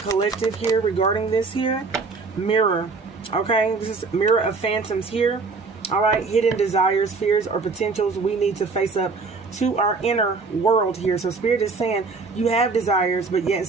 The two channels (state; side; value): quieter; left; 4.3 dB